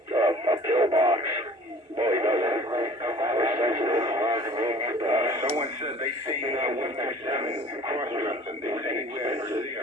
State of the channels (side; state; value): both; normal; correlation 0.48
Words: pill box. Boy, doesn't. We're sensitive. Someone said they seen 127 cross-dressing. They say he wears